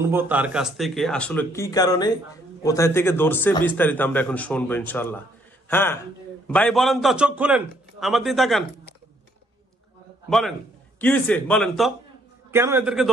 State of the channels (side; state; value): both; normal; correlation 0.68